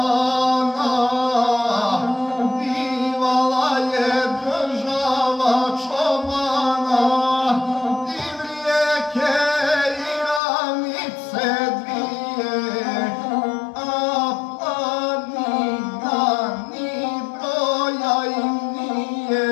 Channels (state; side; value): drops out; right; at 10.4 s